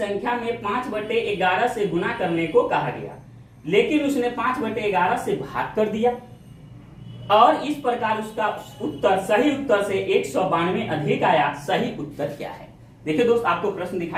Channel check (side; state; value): both; identical; correlation 1.00